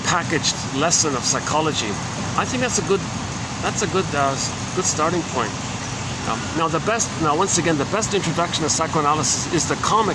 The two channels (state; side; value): identical; both; correlation 1.00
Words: packaged lesson of psychology. I think that's a good starting point. Now once again, the best introduction to psychoanalysis is the